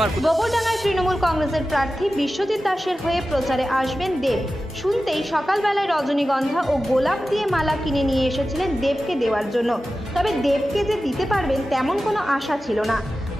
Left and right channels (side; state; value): both; normal; correlation 0.94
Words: আর গোবরডাঙ্গায় তৃণমূল কংগ্রেসের প্রার্থী বিশ্বজিৎ দাসের হয়ে প্রচারে আসবেন দেব। শুনতেই সকালবেলায় রজনীগন্ধা ও গোলাপ দিয়ে মালা কিনে নিয়ে এসেছিলেন দেবকে দেওয়ার জন্য। তবে দেবকে যে দিতে পারবেন তেমন কোনো আশা ছিল না।